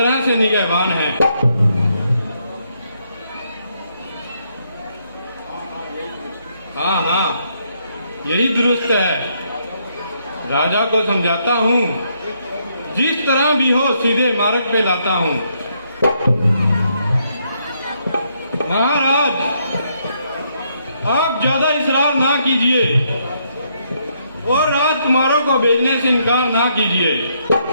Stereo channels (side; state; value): both; inverted; correlation -0.74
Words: से निगहबान हैं। हाँ हाँ, यही दुरुस्त है। राजा को समझाता हूँ, जिस तरह भी हो सीधे मार्ग पे लाता हूँ। महाराज, आप ज्यादा इसरार ना कीजिए और राजकुमारों को भेजने से इनकार ना कीजिए।